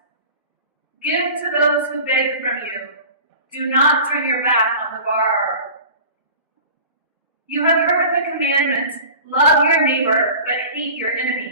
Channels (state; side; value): inverted; both; correlation -0.38